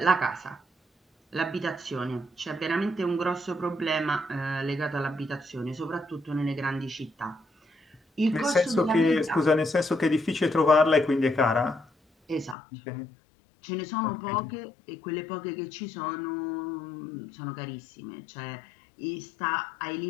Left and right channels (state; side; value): drops out; right; at 12.6 s